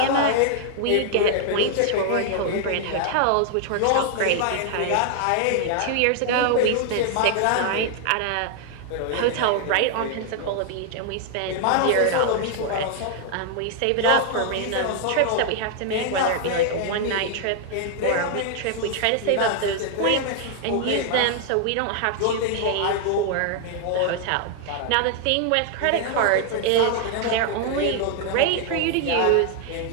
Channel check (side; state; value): both; different; correlation 0.00